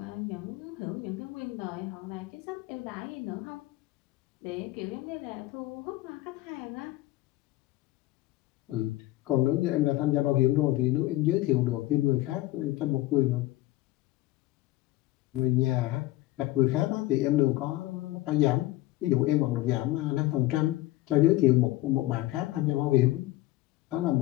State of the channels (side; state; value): right; quieter; 17.0 dB